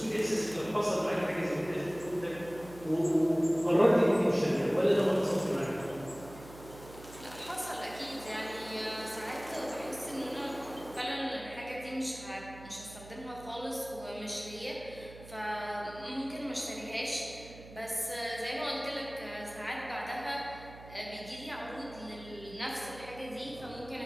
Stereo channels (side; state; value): right; noise; hum, 17 dB below the sound